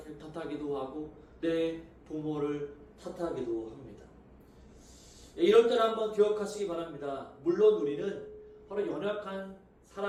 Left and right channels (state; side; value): identical; both; correlation 1.00